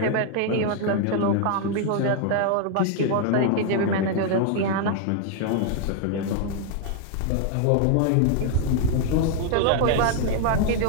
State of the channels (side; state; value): both; different; correlation 0.00